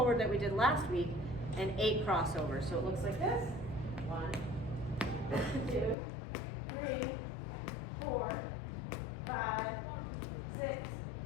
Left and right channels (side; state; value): right; drops out; at 6.0 s